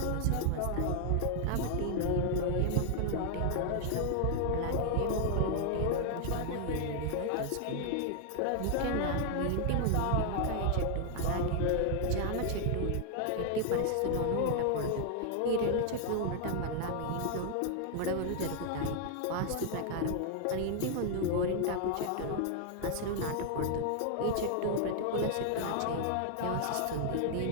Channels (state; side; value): different; both; correlation 0.00